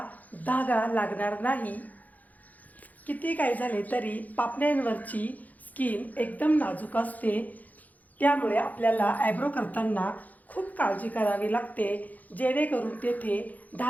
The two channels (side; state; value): right; late; 0.079 ms